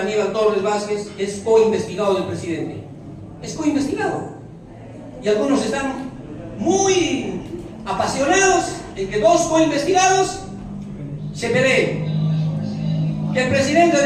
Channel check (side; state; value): both; identical; correlation 1.00